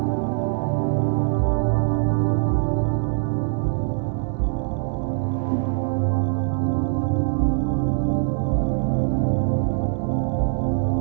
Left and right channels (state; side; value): silent; left; 63 dB below the other